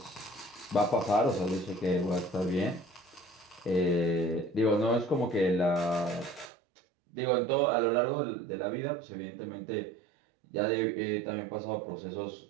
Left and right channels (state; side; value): drops out; left; at 6.5 s